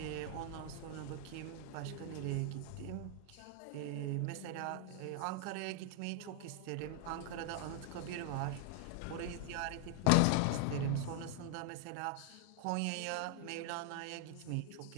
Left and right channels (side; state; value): both; different; correlation 0.00